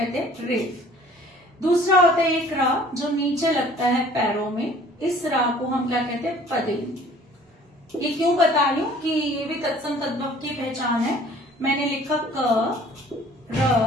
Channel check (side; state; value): both; normal; correlation 0.52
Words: हैं, रेफ। दूसरा होता है एक रा जो नीचे लगता है पैरों में, इस रा को हम क्या कहते हैं, पदेन। ये क्यों बता रही हूं कि ये भी तत्सम तद्भव की पहचान है। मैंने लिखा क, र,